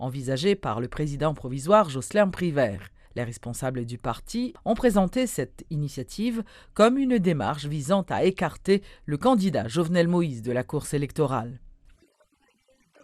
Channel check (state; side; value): identical; both; correlation 1.00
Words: par le président provisoire Jocelyn Privert. Les responsables du parti ont présenté cette initiative comme une démarche visant à écarter le candidat Jovenel Moïse de la course électorale. Le président Privert a deux